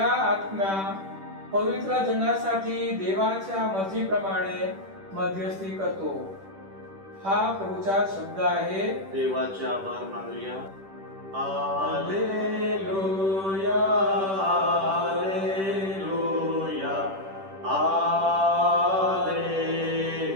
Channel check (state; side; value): late; left; 10 ms